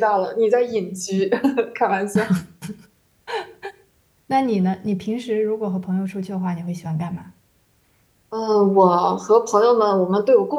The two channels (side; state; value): both; identical; correlation 1.00